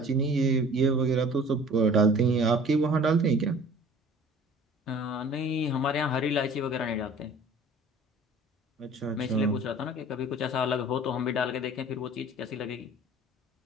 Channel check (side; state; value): both; normal; correlation 0.46